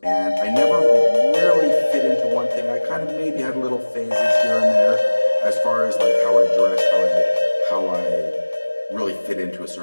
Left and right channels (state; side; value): inverted; both; correlation -1.00